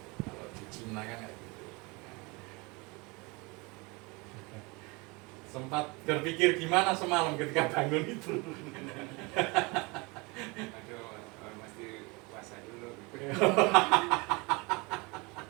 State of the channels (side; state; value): left; quieter; 27.0 dB